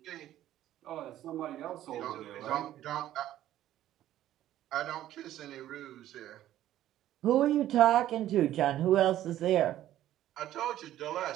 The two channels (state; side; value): quieter; left; 13.0 dB